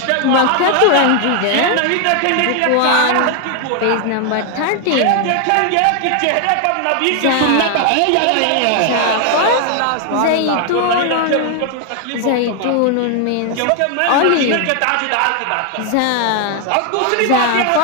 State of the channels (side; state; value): both; different; correlation 0.00